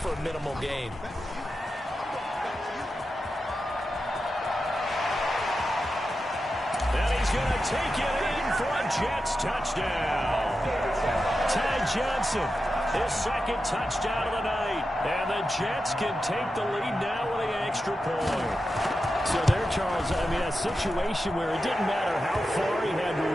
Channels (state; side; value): normal; both; correlation 0.90